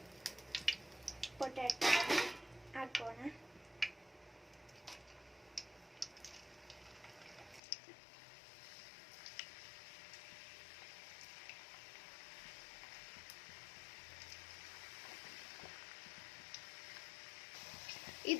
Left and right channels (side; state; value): right; drops out; at 7.6 s